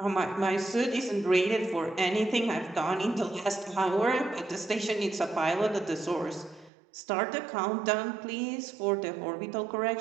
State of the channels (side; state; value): left; drops out; at 6.7 s